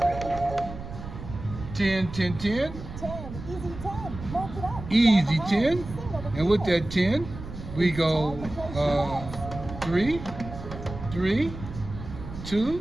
10, easy 10, and with that 10, we go 3, 2,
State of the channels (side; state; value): right; noise; rumble, 11 dB below the sound